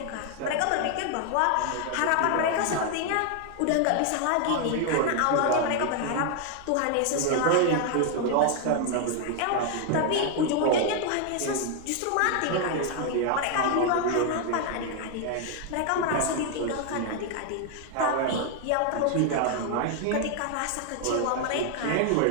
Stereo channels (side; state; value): both; different; correlation 0.01